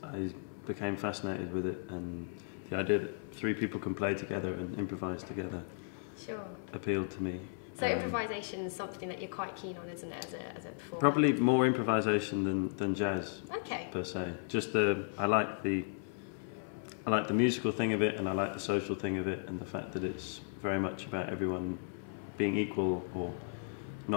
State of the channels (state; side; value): silent; right; 54 dB below the other